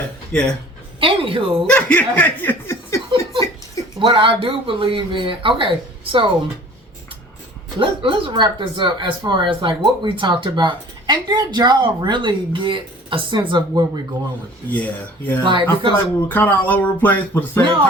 Yeah. Anywho, what I do believe in. Okay, so let's wrap this up as far as like what we talked about. And did y'all really get a sense of where we're going with this? Yeah. Like, I feel like we were kind of all over the place, but at the same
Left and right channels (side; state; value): both; normal; correlation 0.47